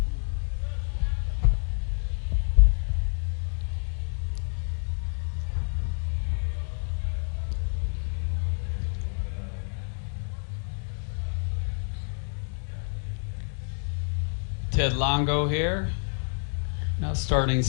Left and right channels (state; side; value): silent; right; 59 dB below the other